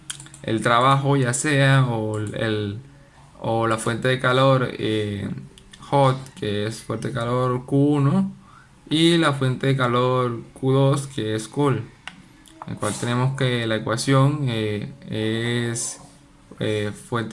el trabajo, ya sea o la fuente de calor hot, que es fuente de calor Q1, y la fuente de calor Q2, que es cool, en el cual tenemos que la ecuación es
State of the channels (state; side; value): identical; both; correlation 1.00